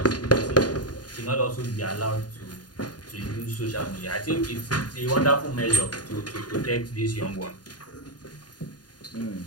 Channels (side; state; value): right; late; 0.69 ms